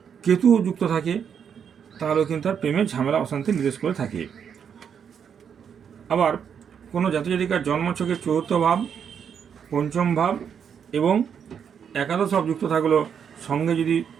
কেতু যুক্ত থাকে, তাহলেও কিন্তু তার প্রেমের ঝামেলা অশান্তি নির্দেশ করে থাকে। আবার কোনো জাতজাতিকার জন্মছকে চতুর্থ ভাব, পঞ্চম ভাব এবং একাদশ ভাব যুক্ত থাকলেও সঙ্গে যদি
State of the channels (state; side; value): quieter; left; 7.6 dB